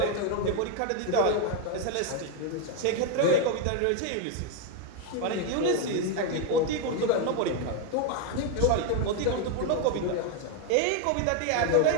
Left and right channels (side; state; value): both; different; correlation 0.01